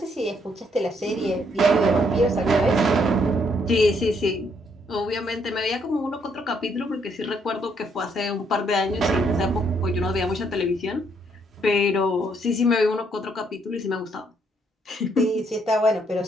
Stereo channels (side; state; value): both; normal; correlation 0.71